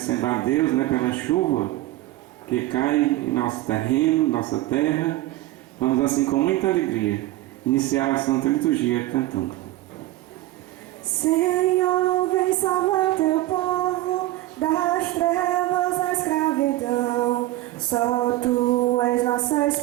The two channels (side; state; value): left; quieter; 16.5 dB